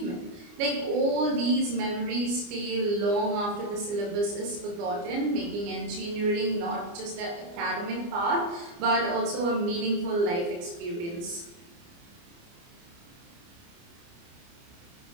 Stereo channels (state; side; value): late; left; 29 ms